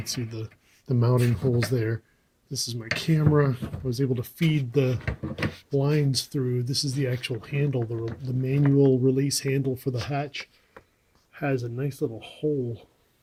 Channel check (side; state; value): both; identical; correlation 1.00